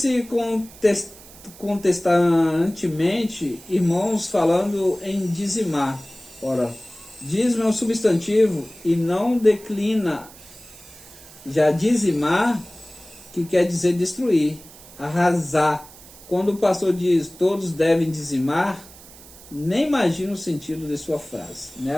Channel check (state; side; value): noise; right; hiss, 20 dB below the sound